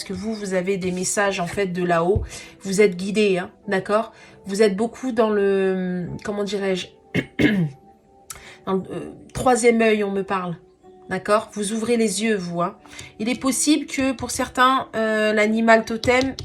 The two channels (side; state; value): both; identical; correlation 1.00